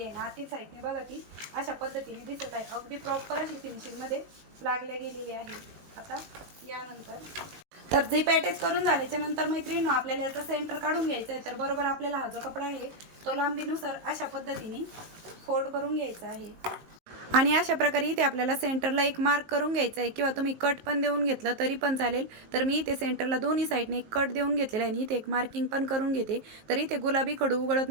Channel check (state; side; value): late; left; 19 ms